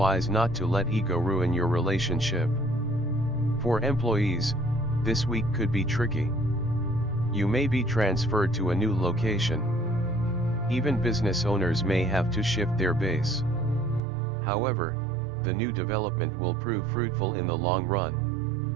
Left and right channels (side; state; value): left; drops out; at 14.0 s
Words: not to let ego ruin your relationship. For employees, this week could be tricky. You may be transferred to a new location. Even business owners may have to shift their base. However, the new development will prove fruitful in the long run.